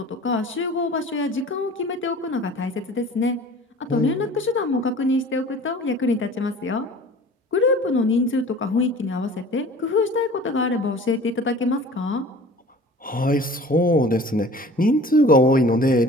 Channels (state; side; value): normal; both; correlation 0.44